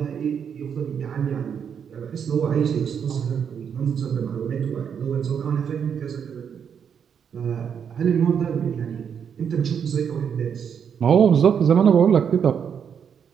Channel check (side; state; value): left; quieter; 7.6 dB